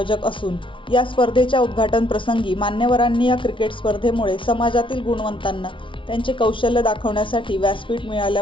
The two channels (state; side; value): late; right; 0.25 ms